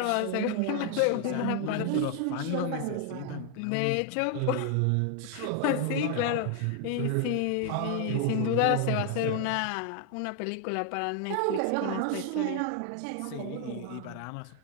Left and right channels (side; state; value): both; different; correlation 0.00